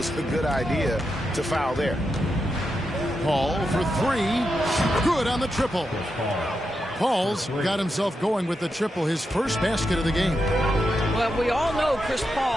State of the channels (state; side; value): normal; both; correlation 0.86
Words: a good idea to foul there. Paul for 3. Good on the triple. Paul's got himself going with the triple, his first basket of the game. Well, we all know Chris